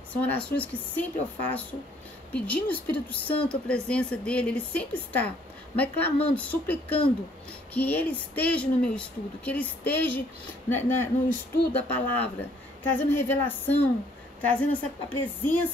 São orações que sempre eu faço, pedindo ao Espírito Santo a presença dele. Ele sempre está, mas clamando, suplicando que ele esteja no meu estudo, que ele esteja no estudo da palavra, trazendo revelação, trazendo a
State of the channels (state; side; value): normal; both; correlation 0.63